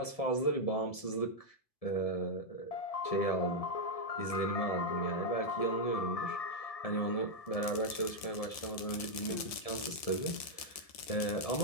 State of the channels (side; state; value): right; late; 1.7 ms